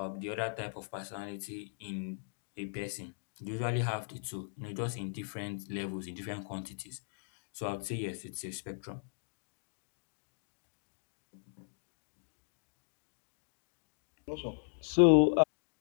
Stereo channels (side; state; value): right; silent; digital silence